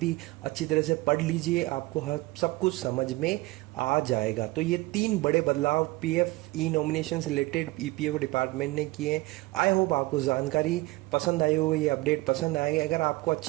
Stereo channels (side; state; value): left; quieter; 21.4 dB